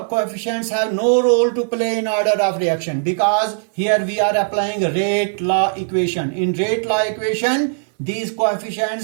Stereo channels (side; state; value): left; silent; 63 dB below the other